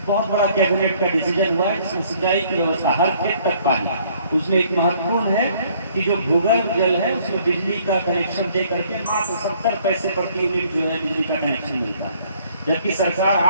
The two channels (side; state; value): both; inverted; correlation -0.61